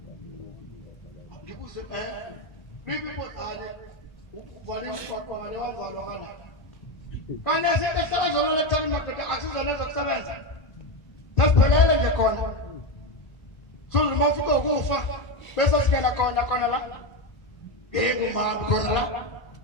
ngibuze bibi kodale uvale umshwaqwa ngale wavalwa kana kana sithe sazolo lethani madoda asizona zokusebenza tasiphelele nje khona sulu mafika ukufa bese singena khona la nginguma khona la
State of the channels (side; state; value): right; late; 1.4 ms